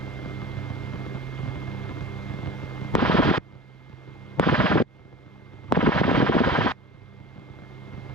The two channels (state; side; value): normal; both; correlation 0.36